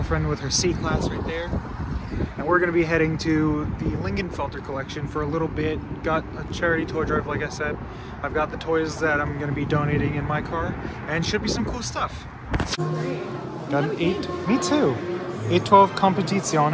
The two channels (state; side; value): identical; both; correlation 1.00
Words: with her C-Class right there. And we're going to be heading to the Lingenfelter collection for a little bit. Got a charity toy drive, like I said. I've got the toys that I'm going to be donating in my car, and should be some cool stuff. Got an 8, me too. 812